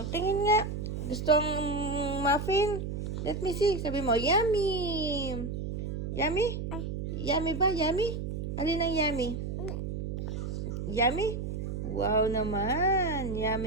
tingin nga. Gusto ang muffin? Let me see. Sabi mo, yummy. Yummy? Yummy ba? Yummy? Alin ang yummy? Yummy? Wow naman.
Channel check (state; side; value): noise; right; hum, 4 dB below the sound